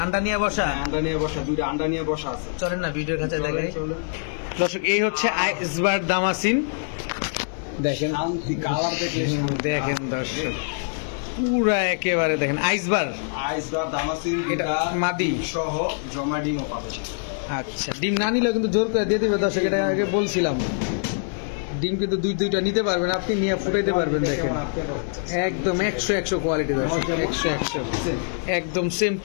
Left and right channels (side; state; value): right; silent; digital silence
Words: আন্ডা নিয়ে বসা, আন্ডা নিয়ে বসা, দুইটা আন্ডা নিয়ে বসা আছে। চলেন না ভিডিওর কাছে দেখাই দর্শক। এই হচ্ছে আইসবার দামাসিন, দেখেন কালার দেখেন দর্শক, পুরা একেবারে দেখেন আইসবার দামাসিন। এটা মাদি সহ জমা ডিমও পাবে। আচ্ছা, ডিম না নিলেও কিন্তু জোর করে দিয়ে দেবে দর্শক, এটা আগে বলছিলাম। ডিম কিন্তু দুইটা নিতে পারবেন আপনি, নিয়ে ফুটাইতে পারবেন। দেখেন একদম 100 কোয়ালিটি দর্শক, 100 একদম same